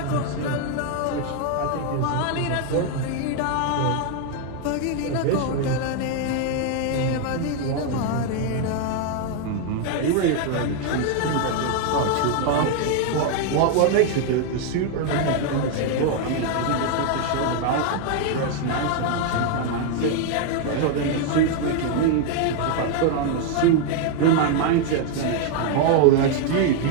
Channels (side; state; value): both; different; correlation 0.00